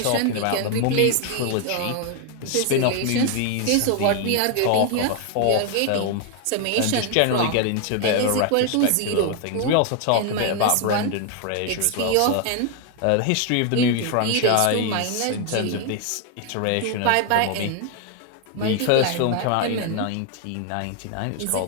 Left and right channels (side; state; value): both; different; correlation 0.00